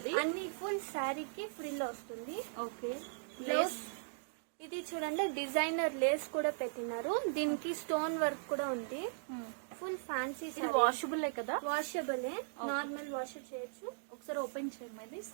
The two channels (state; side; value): silent; left; digital silence